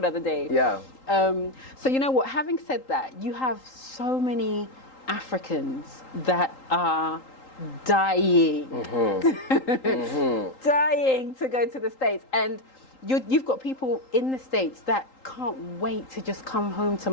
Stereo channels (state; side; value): late; right; 3.8 ms